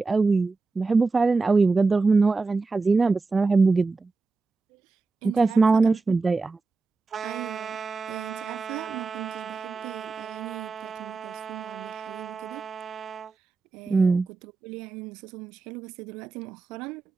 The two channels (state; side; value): quieter; left; 4.0 dB